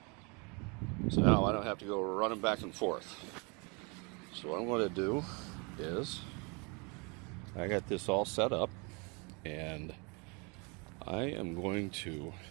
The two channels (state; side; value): quieter; left; 31.3 dB